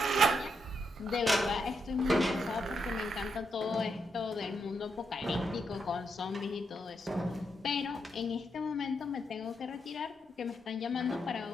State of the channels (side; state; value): both; normal; correlation 0.81